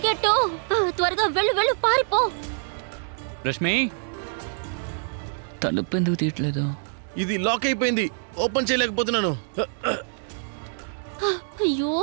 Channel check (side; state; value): left; silent; 60 dB below the other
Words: త్వరగా వెళ్ళు వెళ్ళు, పారిపో. రష్మి, తలుపు ఎందుకు తీయట్లేదు? ఇది లాక్ అయిపోయింది, ఓపెన్ చేయలేకపోతున్నాను. అయ్యో,